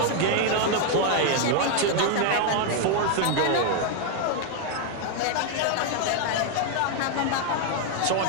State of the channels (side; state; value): both; different; correlation 0.00